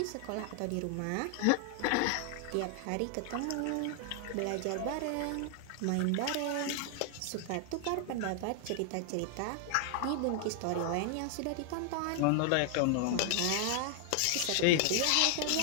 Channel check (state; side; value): different; both; correlation 0.00